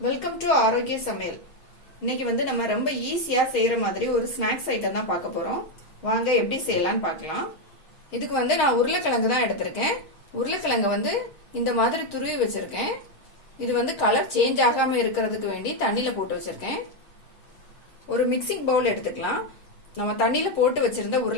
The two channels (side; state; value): right; late; 6.4 ms